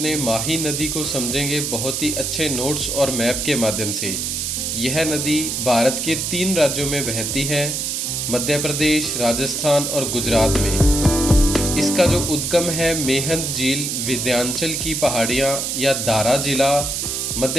माही नदी को समझेंगे बहुत ही अच्छे नोट्स और मैप के माध्यम से। यह नदी भारत के 3 राज्यों में बहती है, मध्य प्रदेश, राजस्थान और गुजरात में। इसका जो उद्गम है मेहंद झील विंध्याचल की पहाड़ियाँ या दारा जिला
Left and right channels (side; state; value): right; noise; hiss, 2 dB below the sound